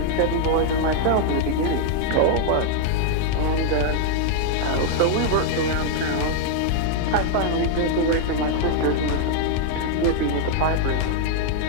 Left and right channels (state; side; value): different; both; correlation 0.00